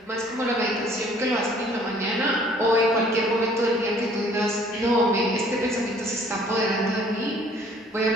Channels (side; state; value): both; normal; correlation 0.57